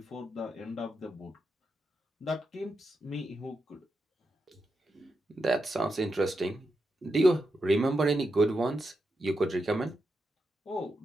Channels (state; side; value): normal; both; correlation 0.86